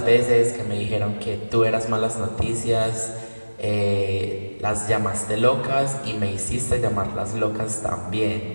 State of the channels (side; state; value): both; inverted; correlation -1.00